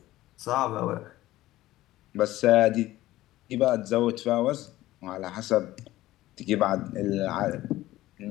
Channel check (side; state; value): right; quieter; 16.1 dB